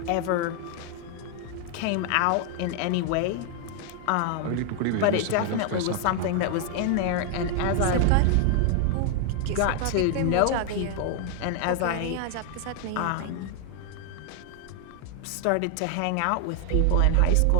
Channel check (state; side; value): different; both; correlation 0.00